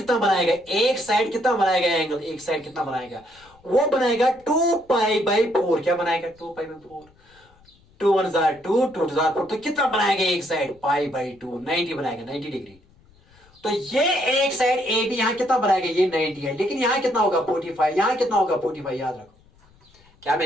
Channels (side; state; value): left; noise; rumble, 30 dB below the sound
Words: बनाएगा, एक साइड कितना बनाएगा एंगल, एक साइड कितना बनाएगा, वो बनाएगा 2 पाई बाई 4, क्या बनाएगा 2 पाई बाई 4, 2 1 2, 2 2 4, तो कितना बनाएगा एक साइड पाई बाई 2, 90 बनाएगा, 90 डिग्री। तो ये एक साइड ए बी यहां कितना बनाएगा, ये 90 है, लेकिन यहां कितना होगा 45, यहां कितना होगा 45, याद रखो क्या